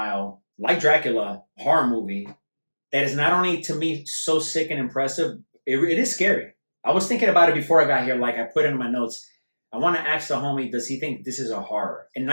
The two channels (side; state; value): both; inverted; correlation -1.00